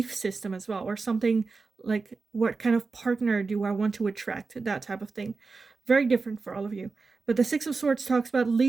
system as well, or something like, what kind of partner do I want to attract, that type of thing. Very different for all of you. But the Six of Swords talks about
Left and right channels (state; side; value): quieter; left; 4.2 dB